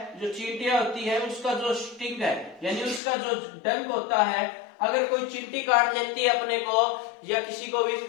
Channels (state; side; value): drops out; right; at 3.0 s